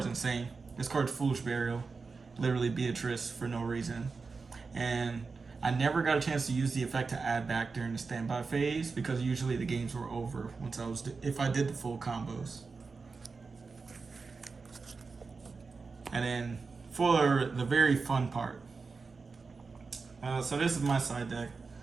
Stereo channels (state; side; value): quieter; left; 4.5 dB